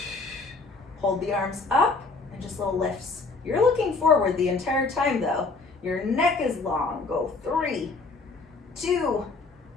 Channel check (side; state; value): right; quieter; 3.9 dB